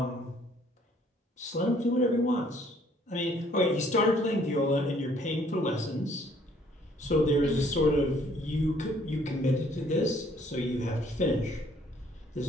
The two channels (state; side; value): normal; both; correlation 0.61